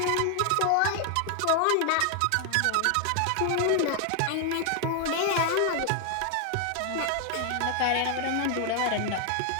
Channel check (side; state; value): both; different; correlation 0.00